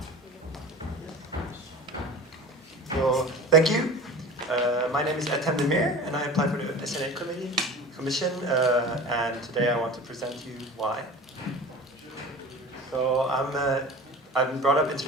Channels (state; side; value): normal; both; correlation 0.37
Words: So, thank you. My name is Esn Nl, and I apply for the Esn Nl Commission, and today I want to present you why. So I'm brought up